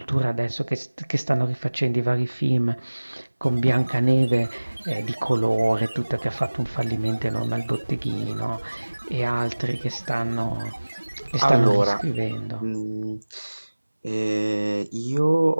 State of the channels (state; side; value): inverted; both; correlation -1.00